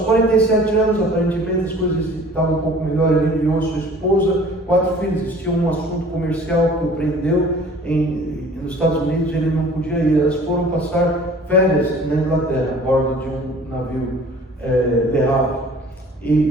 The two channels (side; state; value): both; normal; correlation 0.49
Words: anos, aparentemente as coisas estavam um pouco melhor. Ele enviou sua esposa, 4 filhos. Existia um assunto comercial que o prendeu nos Estados Unidos, ele não podia ir. Elas foram passar férias na Inglaterra, a bordo de um navio Le Havre.